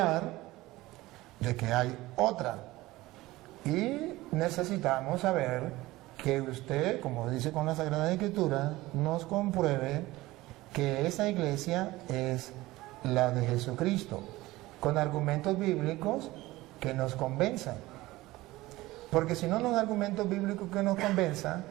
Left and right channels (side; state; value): left; quieter; 18.7 dB